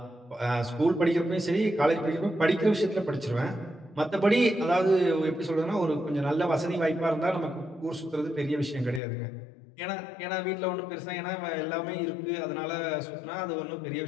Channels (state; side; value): drops out; right; at 9.0 s